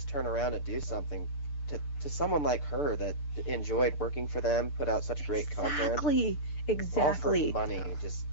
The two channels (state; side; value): late; right; 6.8 ms